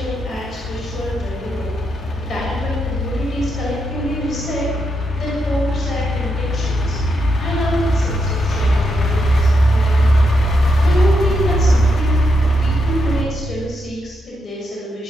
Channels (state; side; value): normal; both; correlation 0.82